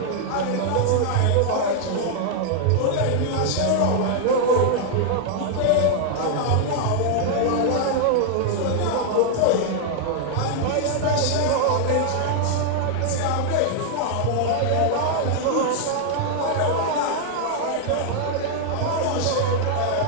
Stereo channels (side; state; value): both; different; correlation 0.00